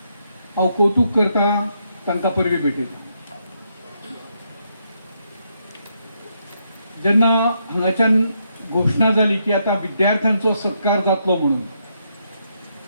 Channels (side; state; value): both; inverted; correlation -0.78